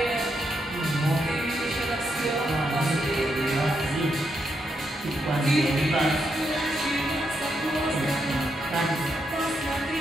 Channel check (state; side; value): normal; both; correlation 0.81